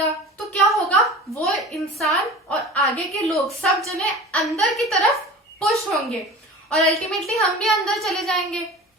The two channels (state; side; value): normal; both; correlation 0.37